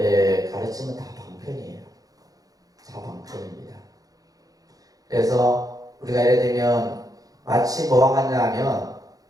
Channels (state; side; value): late; left; 0.18 ms